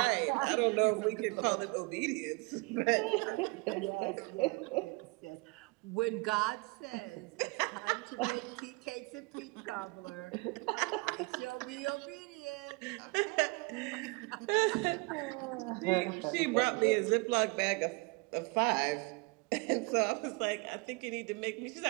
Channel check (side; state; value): left; quieter; 28.3 dB